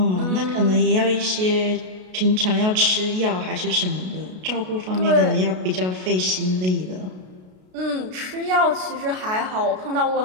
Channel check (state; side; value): late; left; 33 ms